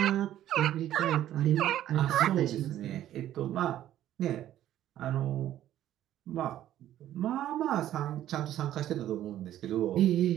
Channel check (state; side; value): quieter; left; 12.4 dB